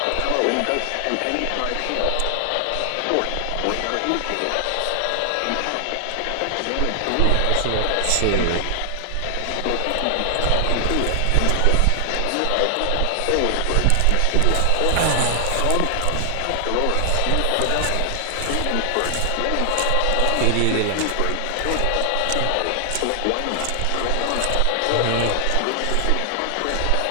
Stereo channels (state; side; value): different; both; correlation 0.00